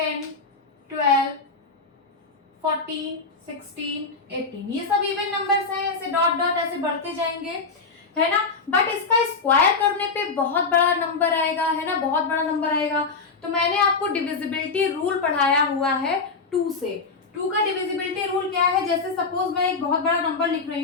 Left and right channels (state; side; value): quieter; right; 4.4 dB